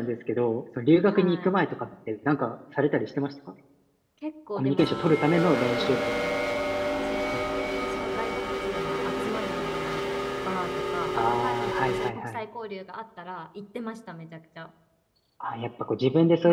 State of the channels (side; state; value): both; identical; correlation 1.00